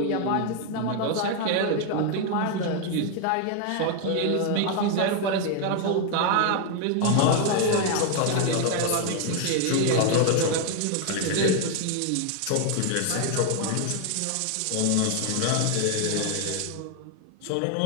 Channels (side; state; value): both; different; correlation 0.01